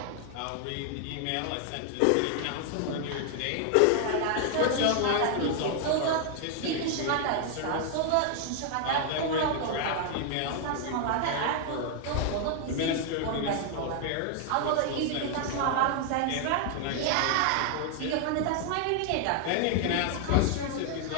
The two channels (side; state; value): both; different; correlation 0.00